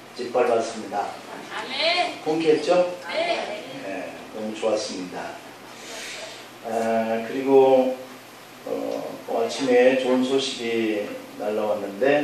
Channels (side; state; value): both; identical; correlation 1.00